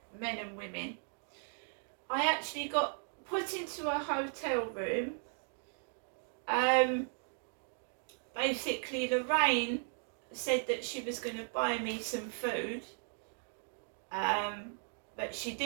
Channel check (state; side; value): silent; left; 53 dB below the other